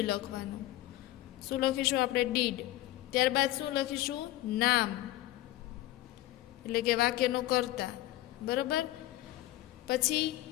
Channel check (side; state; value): right; quieter; 16.2 dB